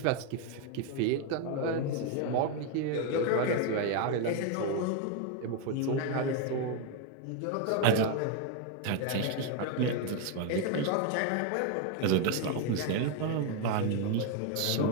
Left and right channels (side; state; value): both; different; correlation 0.01